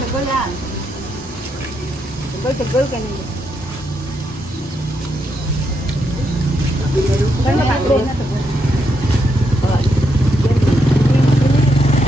tegol kan. Tegol kan ini. Kan makan tegol.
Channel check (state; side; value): normal; both; correlation 0.80